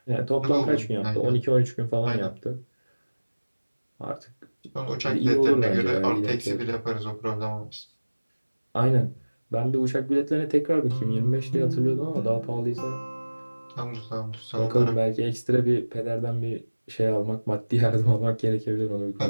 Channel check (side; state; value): both; inverted; correlation -1.00